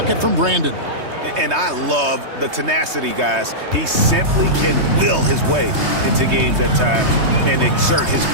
from Brandon. And I love the tenacity, guys. He simply can will his way into games at times and exert his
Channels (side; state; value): left; late; 3.2 ms